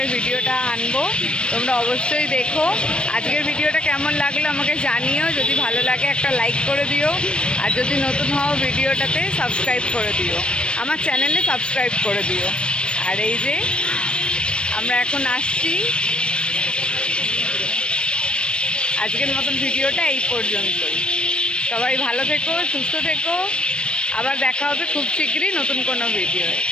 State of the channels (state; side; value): late; right; 0.057 ms